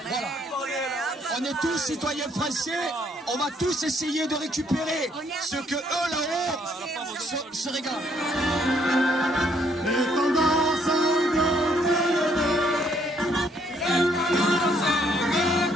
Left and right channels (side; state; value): both; normal; correlation 0.68